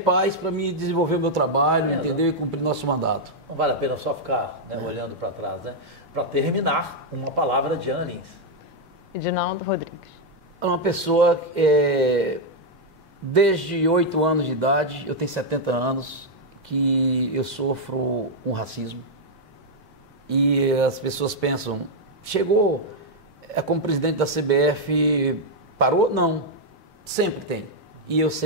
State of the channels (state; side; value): normal; both; correlation -0.01